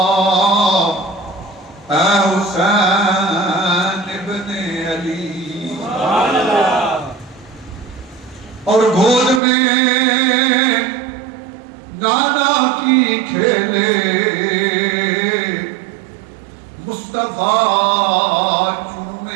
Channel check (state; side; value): drops out; left; at 9.4 s